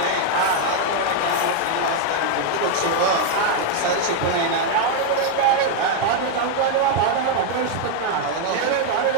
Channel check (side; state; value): both; different; correlation 0.00